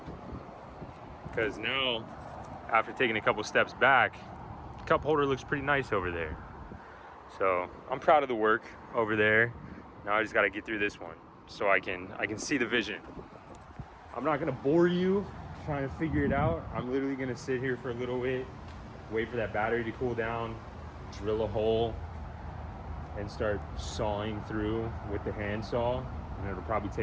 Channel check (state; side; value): identical; both; correlation 1.00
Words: because now, after taking a couple steps back, the cup holder looks pretty nice over there. So I'm proud of the work over there. Now I just gotta get through this one so I can see the vision. I'm not gonna bore you trying to figure it out. I'm literally gonna sit here for a little bit, wait for that battery to cool down, drill a hole, and start sawing through with the hand saw. And it'll probably